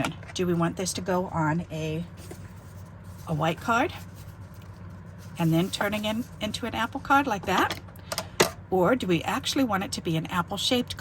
Do we want this to go on a white card and then turning into an apple card like that? Or do we actually want it to be an apple-shaped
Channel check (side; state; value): both; identical; correlation 1.00